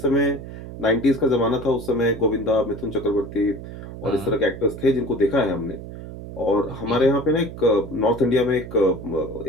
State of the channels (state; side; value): noise; right; hum, 11 dB below the sound